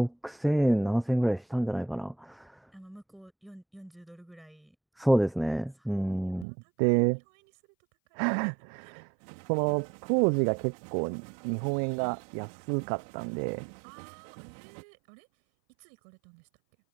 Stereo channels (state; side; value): drops out; left; at 6.5 s